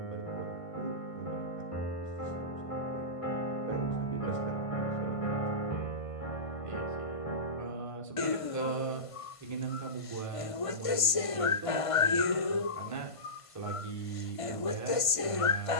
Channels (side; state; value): right; late; 1.5 ms